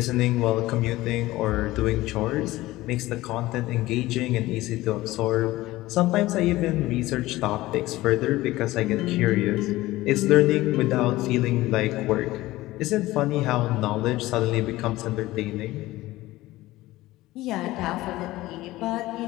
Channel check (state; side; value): quieter; right; 17.7 dB